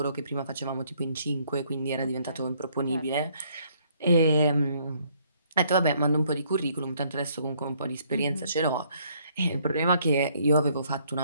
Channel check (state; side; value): inverted; both; correlation -0.66